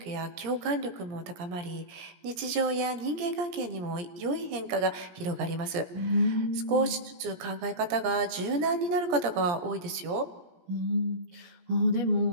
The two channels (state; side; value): late; left; 17 ms